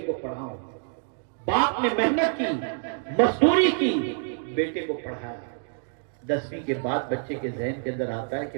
को पढ़ाऊं। बाप ने मेहनत की, मजदूरी की, बेटे को पढ़ाया। 10वीं के बाद बच्चे के जहन के अंदर आता है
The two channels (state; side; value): silent; left; 60 dB below the other